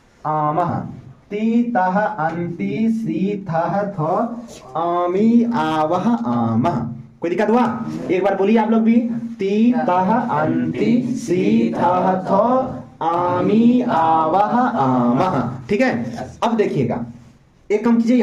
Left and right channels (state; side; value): identical; both; correlation 1.00